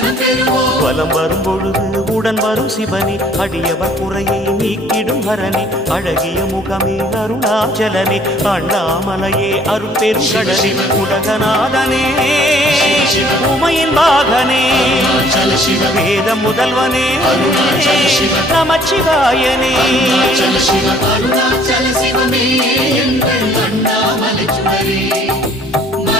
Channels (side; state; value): both; normal; correlation 0.58